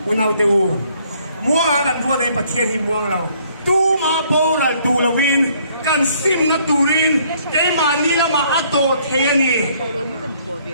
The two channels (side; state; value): both; inverted; correlation -0.64